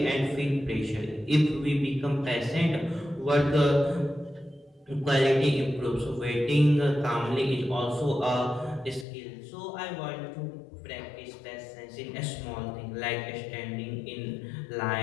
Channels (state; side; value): drops out; right; at 9.1 s